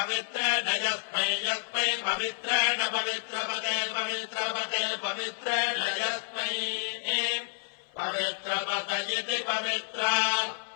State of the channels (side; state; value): right; silent; 57 dB below the other